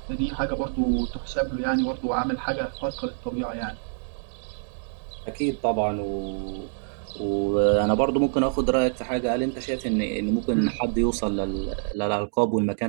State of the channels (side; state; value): left; silent; digital silence